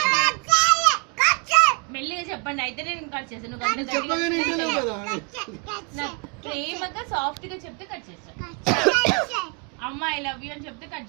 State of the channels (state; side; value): quieter; left; 32.0 dB